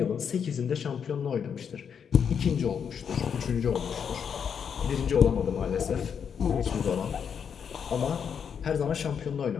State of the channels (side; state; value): right; quieter; 7.3 dB